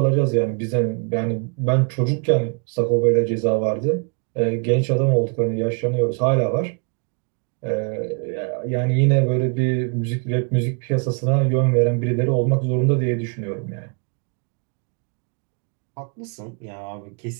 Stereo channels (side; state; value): left; quieter; 37.7 dB